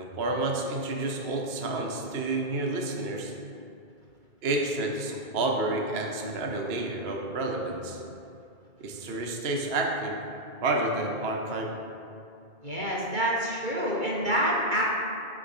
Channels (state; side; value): late; left; 2.2 ms